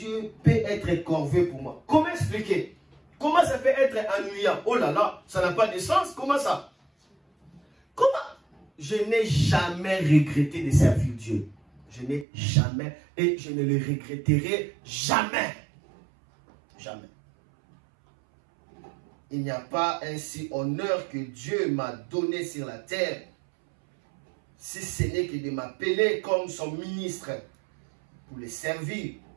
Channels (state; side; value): drops out; left; at 12.2 s